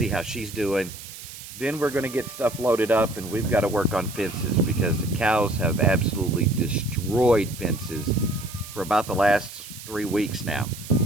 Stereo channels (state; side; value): noise; right; hiss, 14 dB below the sound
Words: how she's doing. Then we're going to get stuff loaded up, and we've got to work on fences because the cows have absolutely destroyed fences for about the last 3 weeks now.